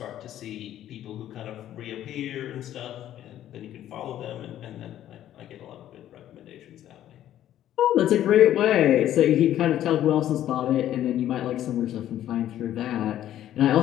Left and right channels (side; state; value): right; quieter; 12.0 dB